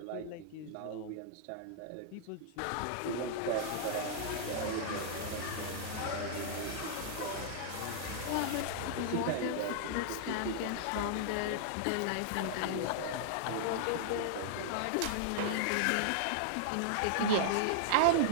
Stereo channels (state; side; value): different; both; correlation -0.01